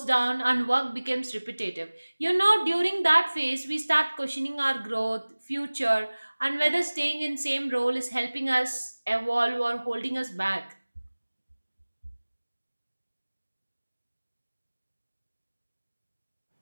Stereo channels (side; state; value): both; inverted; correlation -1.00